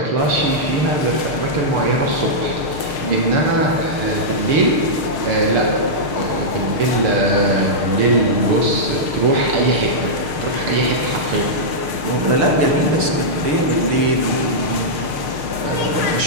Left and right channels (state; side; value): late; left; 6.5 ms